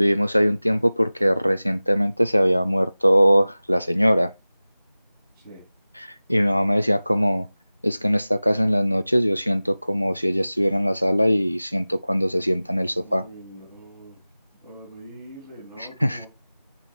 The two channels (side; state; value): both; inverted; correlation -0.98